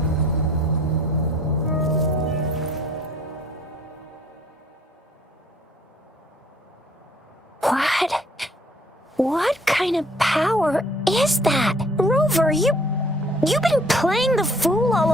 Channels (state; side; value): normal; both; correlation 0.58